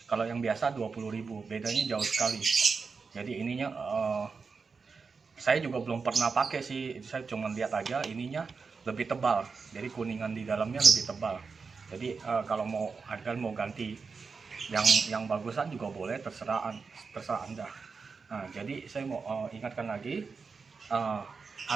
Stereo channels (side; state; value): left; quieter; 5.0 dB